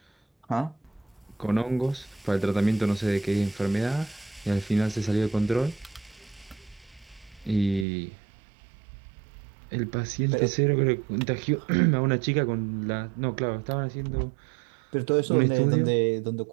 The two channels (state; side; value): drops out; left; at 7.9 s